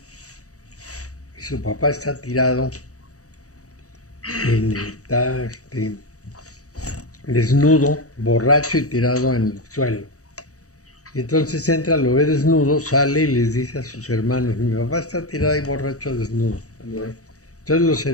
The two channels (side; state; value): right; late; 0.66 ms